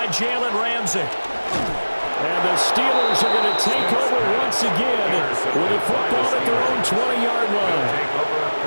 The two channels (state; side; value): inverted; both; correlation -1.00